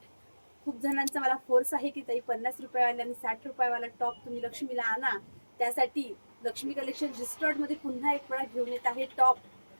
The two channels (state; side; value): inverted; both; correlation -1.00